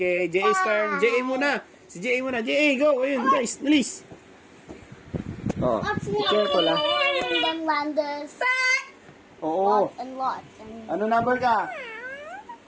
Jay's turn. Jay muna. Si Jay muna. Jay, go. Ayun, guys. Bilis. Oh, careful ah. And then wonders. Oo. Lots and lots. And Ano number ka?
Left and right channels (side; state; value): both; identical; correlation 1.00